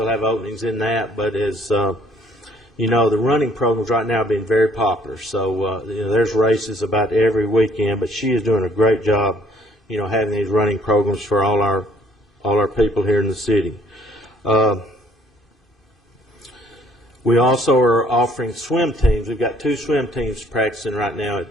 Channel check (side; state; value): both; normal; correlation 0.61